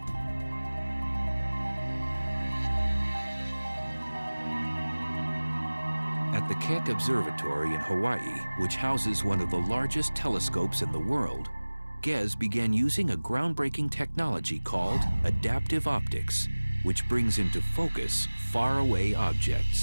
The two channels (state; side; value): inverted; both; correlation -1.00